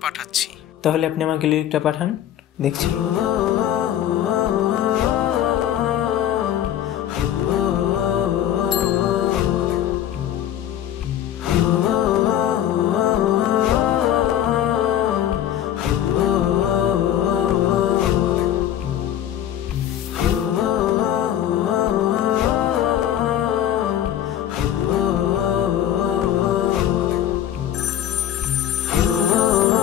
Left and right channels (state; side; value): quieter; right; 11.0 dB